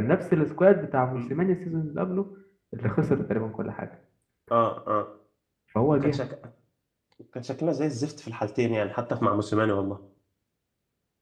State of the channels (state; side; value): identical; both; correlation 1.00